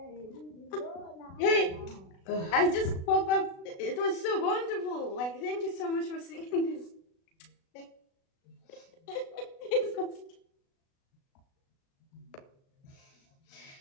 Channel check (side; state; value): right; late; 36 ms